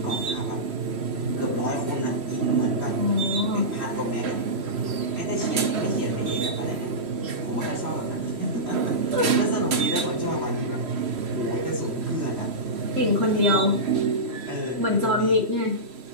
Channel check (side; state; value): left; late; 3.1 ms